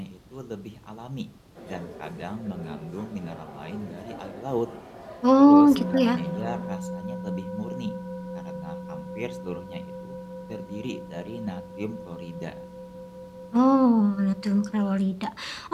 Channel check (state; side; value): identical; both; correlation 1.00